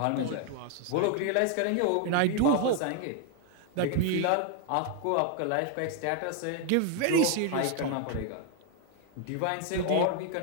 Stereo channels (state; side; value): different; both; correlation 0.00